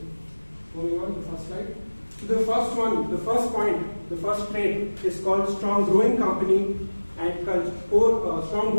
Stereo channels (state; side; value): inverted; both; correlation -1.00